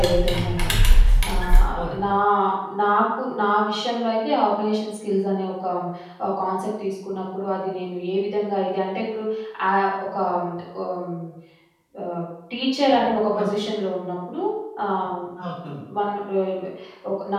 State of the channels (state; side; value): identical; both; correlation 1.00